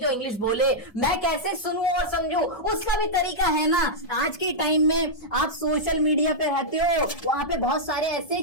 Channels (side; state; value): right; late; 1.7 ms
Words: इंग्लिश बोले, मैं कैसे सुनूं और समझूं? उसका भी तरीका है ना। आज के टाइम में आप सोशल मीडिया पे रहते हो, वहां पे बहुत सारे ऐसे